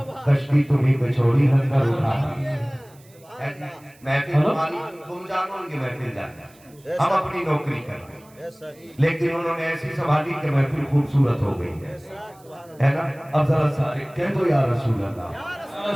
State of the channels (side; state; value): right; noise; hiss, 28 dB below the sound